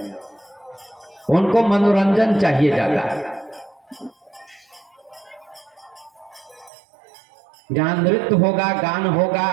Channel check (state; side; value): drops out; left; at 6.7 s